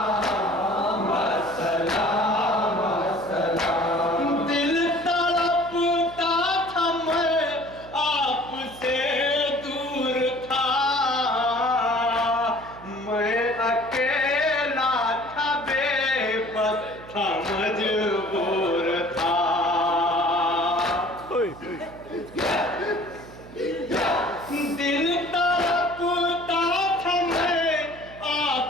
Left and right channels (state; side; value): noise; right; hum, 18 dB below the sound